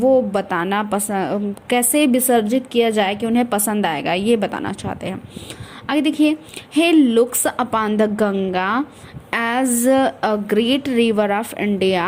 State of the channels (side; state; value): both; identical; correlation 1.00